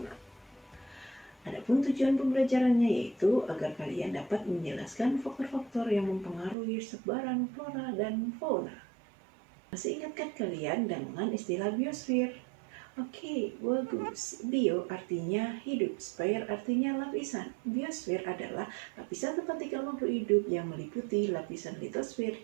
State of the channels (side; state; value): left; drops out; at 6.6 s